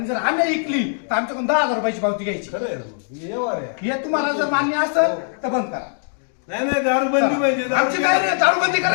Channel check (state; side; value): silent; right; digital silence